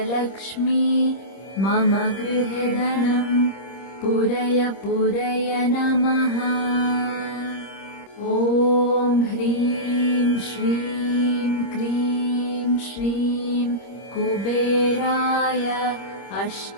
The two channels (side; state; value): right; late; 26 ms